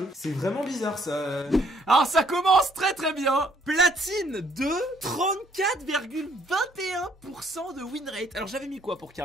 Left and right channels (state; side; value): normal; both; correlation 0.66